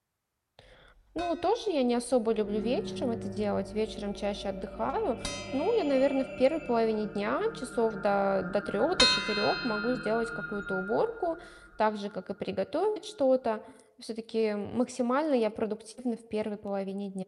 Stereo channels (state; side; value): identical; both; correlation 1.00